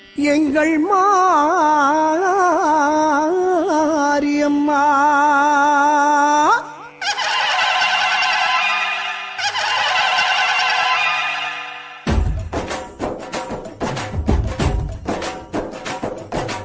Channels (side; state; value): both; identical; correlation 1.00